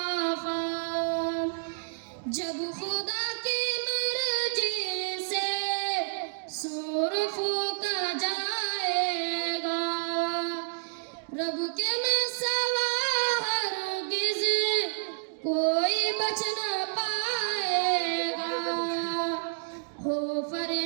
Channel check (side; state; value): left; silent; digital silence